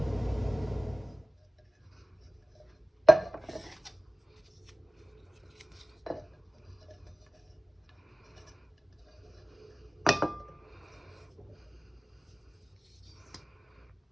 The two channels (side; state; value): both; normal; correlation 0.95